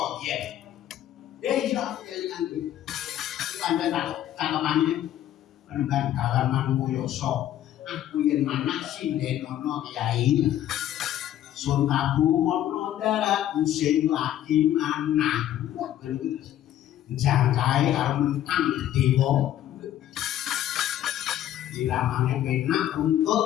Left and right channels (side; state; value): right; quieter; 12.0 dB